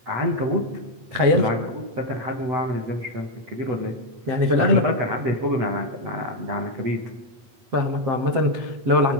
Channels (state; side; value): late; left; 8.3 ms